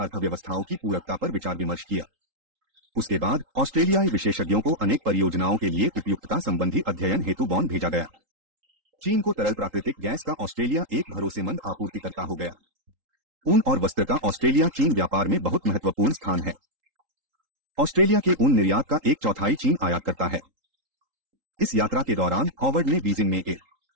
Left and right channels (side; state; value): left; late; 3.8 ms